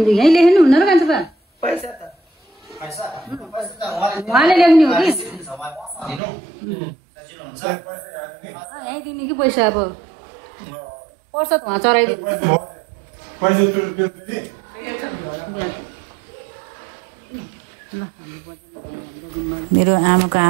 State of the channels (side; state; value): left; drops out; at 6.2 s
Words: यहीँ लेख्नु हुन्न र कान्छा बा? उहाँले लेख्ने हो कि यहीँ दिने कि पैसा? अब पैसा त उहाँ चढाइदिनु। मेरो आमाको